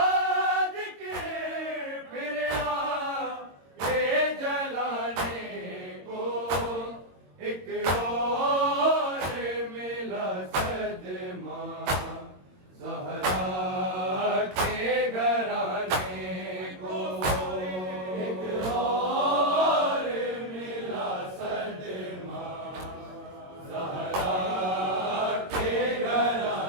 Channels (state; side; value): late; left; 22 ms